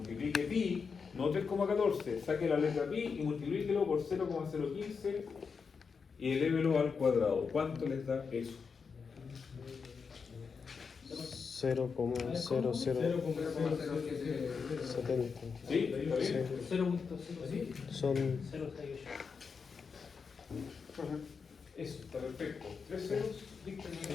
pi, no 3,14, saque la letra pi y multiplíquelo por 0,015 y elévelo al cuadrado. ¿Cuánto les da eso? 0,0070. ¿Sí? ¿Está bien? Son Eso, está perfecto. 3 ceros,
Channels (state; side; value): quieter; right; 5.5 dB